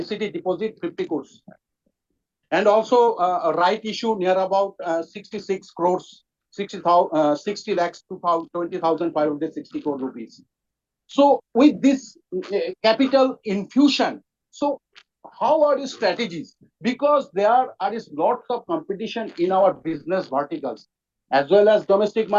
deposit 50 crores. And also a right issue near about 66 crores, 60 lakhs, 20,560 crore rupees. So with this capital infusion, so how are the strategies? Because there is lots of competition in our business verticals, as well as domestic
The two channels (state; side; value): identical; both; correlation 1.00